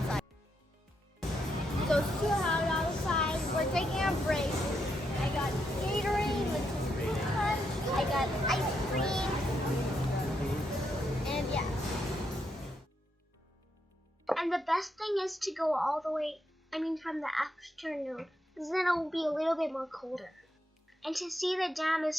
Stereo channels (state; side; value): normal; both; correlation 0.80